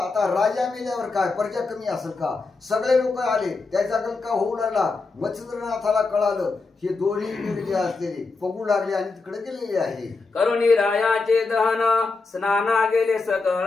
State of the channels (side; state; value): right; quieter; 4.0 dB